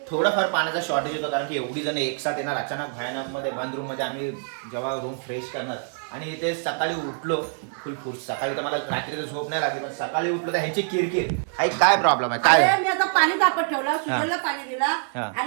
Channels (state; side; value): silent; left; 60 dB below the other